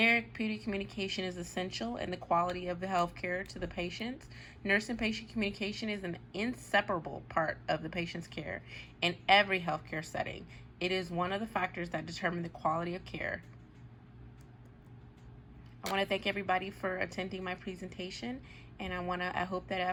communication is essential in the quality of the healthcare to the patients. Nurse and patient communication is an inseparable part of the patient's care in every healthcare setting. It is one of the factors that determine the quality of care. I want to thank everybody for attending my presentation, and I hope that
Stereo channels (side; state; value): both; identical; correlation 1.00